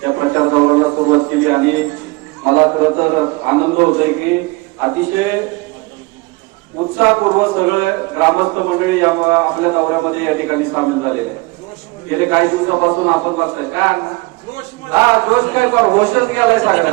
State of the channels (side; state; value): left; quieter; 24.7 dB